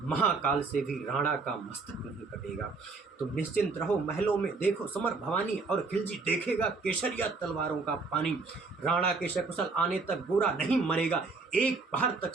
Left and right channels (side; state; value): left; quieter; 4.1 dB